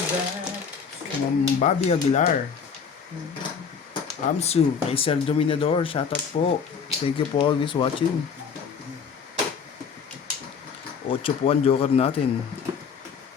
Kay Ma'am Bobby Aguilar. Amsu, kay Sir Dominador, shoutout po. Thank you for always watching. 8 po ang joker natin.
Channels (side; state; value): right; quieter; 6.3 dB